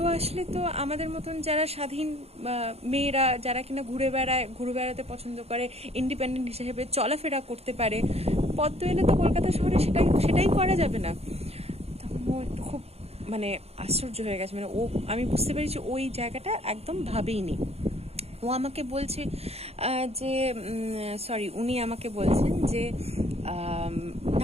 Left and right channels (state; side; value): late; left; 0.30 ms